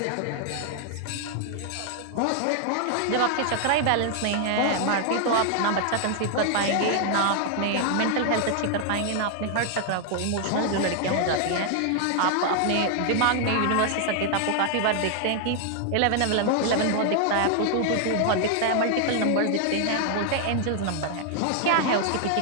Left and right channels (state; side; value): different; both; correlation 0.00